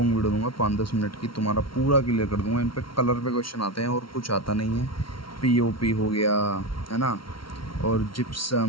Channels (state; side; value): late; right; 0.74 ms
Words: वीडियो दूंगा 5-10 मिनट की, तुम्हारा पूरा क्लियर कर दूंगा। इन पे कलर पे क्वेश्चन आते हैं और कुछ आता नहीं है, POP हो गया है ना, और